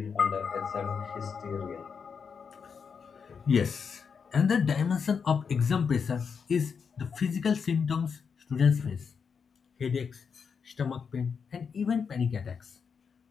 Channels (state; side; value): quieter; right; 6.1 dB